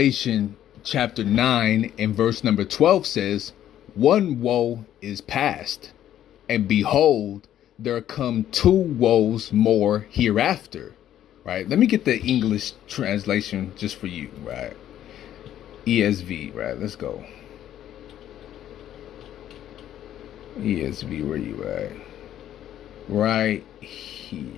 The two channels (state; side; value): quieter; right; 11.5 dB